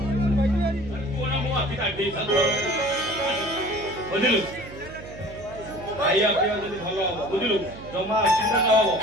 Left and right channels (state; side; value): noise; right; hum, 16 dB below the sound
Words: ବୁଝିଲୁ ଖାଇବା ପିଇବା ଯଦି ଭଲ ହବ ବୁଝିଲୁ ଜମା ଅସୁବିଧା ନ ହବ।